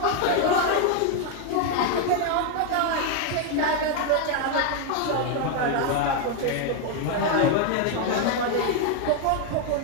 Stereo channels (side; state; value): both; different; correlation 0.01